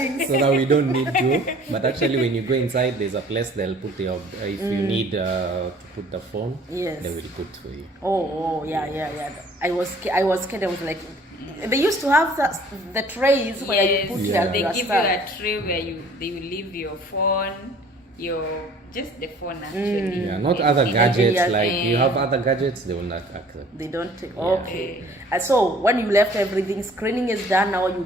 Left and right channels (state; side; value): normal; both; correlation 0.52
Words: So that we don't need to. But actually, when you go inside, there's a place they'll put your. If you need to put the phone, Yes. they will put for you. Yeah. I was scared. I was like, they used to have the trays where you put Yeah. They your give stuff. you a tray where they will leave your phone, just the phone actually. Yeah, not other gadgets. yeah. Like you have other gadgets, they will not accept. They don't take. Okay. So when you left everything, screening is done. Now you're